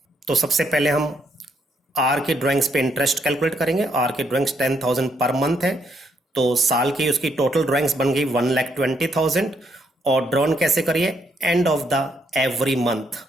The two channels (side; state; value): both; normal; correlation 0.74